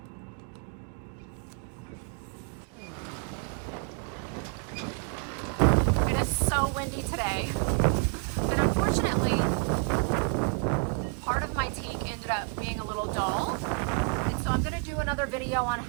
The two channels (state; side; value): quieter; left; 35.7 dB